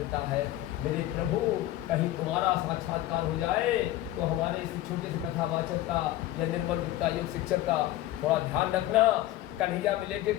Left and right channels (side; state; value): right; quieter; 14.9 dB